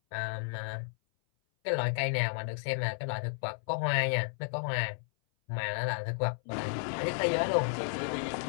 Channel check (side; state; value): right; silent; 56 dB below the other